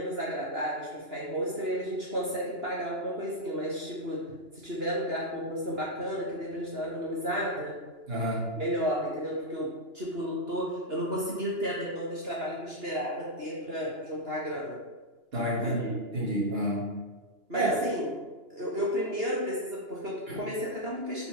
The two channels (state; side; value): late; left; 2.9 ms